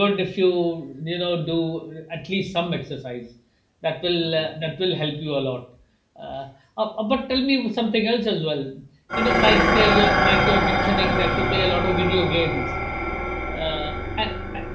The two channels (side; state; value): both; identical; correlation 1.00